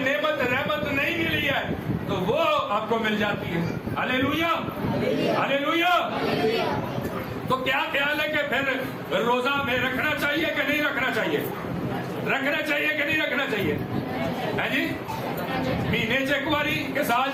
رحمت نہیں ملی ہے تو وہ آپ کو مل جاتی ہے. ہلیلویا، ہلیلویا. تو کیا خیال ہے کہ پھر روزہ ہمیں رکھنا چاہیے کہ نہیں رکھنا چاہیے؟ رکھنا چاہیے کہ نہیں رکھنا چاہیے؟ ہے جی، مہینے چیک واری کہ سال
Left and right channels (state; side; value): identical; both; correlation 1.00